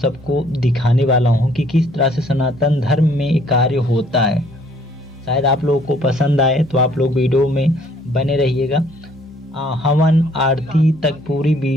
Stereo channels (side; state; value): both; normal; correlation 0.62